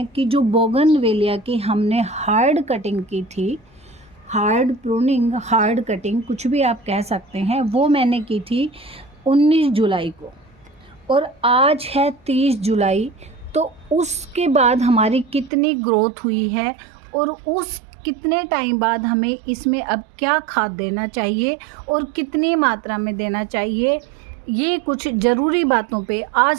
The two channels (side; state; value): left; drops out; at 15.5 s